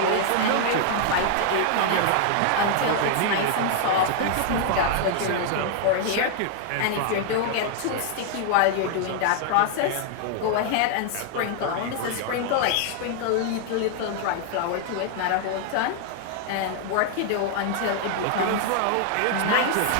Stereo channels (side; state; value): both; different; correlation 0.00